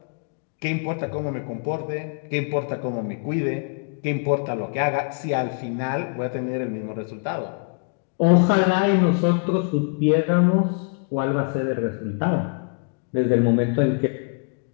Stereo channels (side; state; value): right; quieter; 39.5 dB